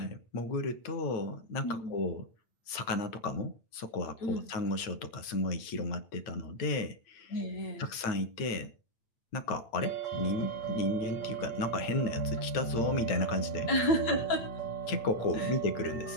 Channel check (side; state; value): right; late; 8.9 ms